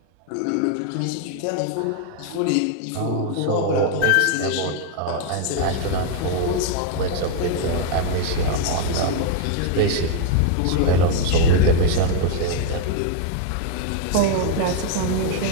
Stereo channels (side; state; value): both; different; correlation 0.00